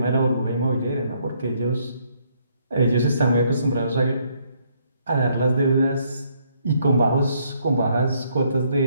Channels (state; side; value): inverted; both; correlation -0.70